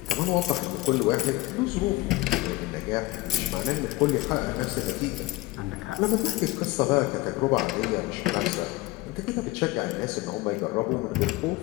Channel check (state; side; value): quieter; right; 19.8 dB